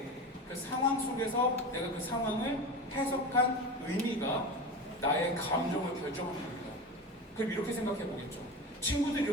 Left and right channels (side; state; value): both; normal; correlation 0.27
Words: 그 상황 속에서 내가 그 상황을 해석한 의미가 나의 감정을 결정하는 겁니다. 그럼 이렇게 생각해보겠죠. 친구들이